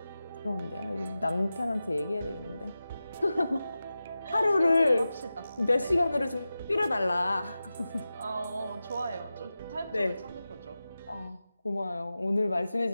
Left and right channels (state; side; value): inverted; both; correlation -0.94